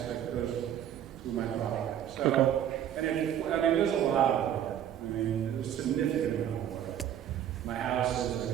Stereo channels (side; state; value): left; quieter; 10.3 dB